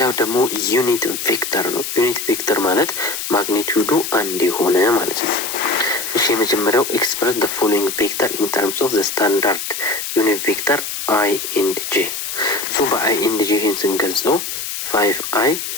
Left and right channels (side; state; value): left; noise; hiss, 5 dB below the sound